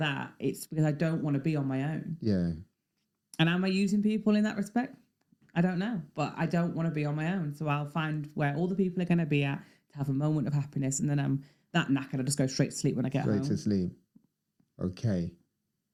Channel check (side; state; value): both; identical; correlation 1.00